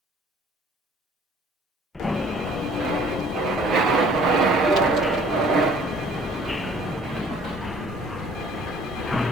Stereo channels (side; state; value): both; normal; correlation 0.55